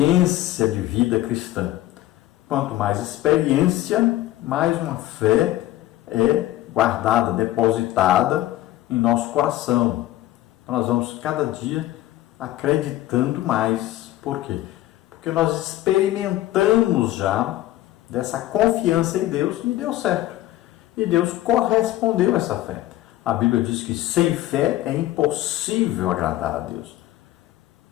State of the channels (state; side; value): quieter; right; 15.2 dB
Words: de vida cristã. Quanto mais experiência, mais uma fé é guardada, depositada em nosso coração. Então nós vamos cada dia acreditando mais. Por quê? Porque nós experimentamos já dessa confiança em Deus e deu certo. E Deus correspondeu a essa fé. a Bíblia diz que sem fé é impossível agradar a Deus.